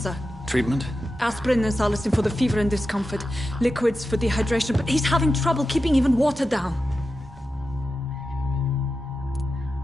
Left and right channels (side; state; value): both; normal; correlation 0.91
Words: Treatment? Aspirin and salicin for the fever and discomfort. Liquids for dehydration, but he's having trouble keeping even water down.